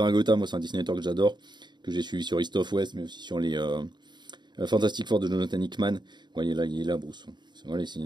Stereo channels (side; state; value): left; late; 0.21 ms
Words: moi c'est un dessinateur que j'adore, que j'ai suivi sur East of West, mais aussi sur les Fantastic Four de Jonathan Hickman. Vous voyez là, il est là Bruce. Voilà, c'est